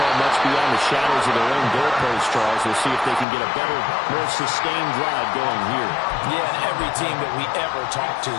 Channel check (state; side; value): drops out; right; at 3.2 s